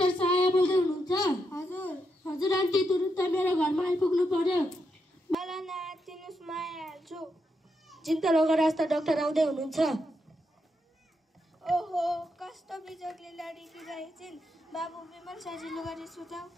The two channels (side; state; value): both; normal; correlation 0.82